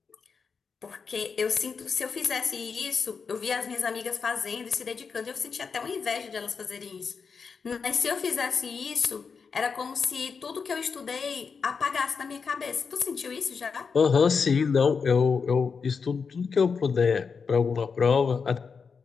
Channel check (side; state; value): right; quieter; 5.5 dB